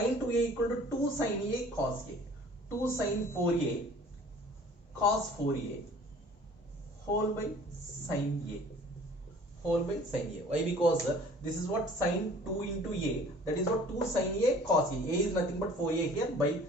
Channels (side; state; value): both; normal; correlation 0.50